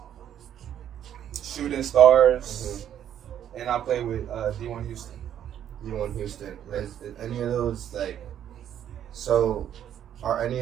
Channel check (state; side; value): quieter; left; 10.2 dB